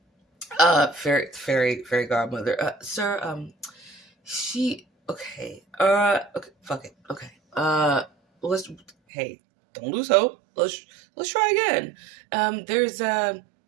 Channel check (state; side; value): drops out; left; at 8.9 s